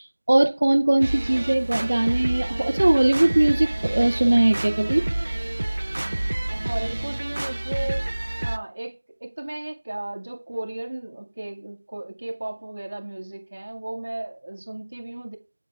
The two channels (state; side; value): inverted; both; correlation -1.00